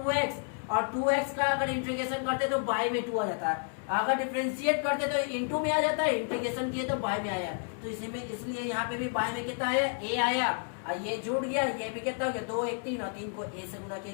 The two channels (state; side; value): silent; right; 55 dB below the other